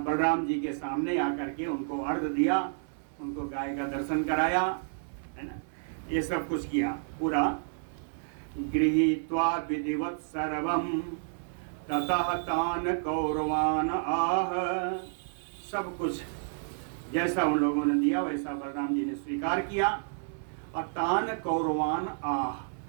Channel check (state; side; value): silent; left; 58 dB below the other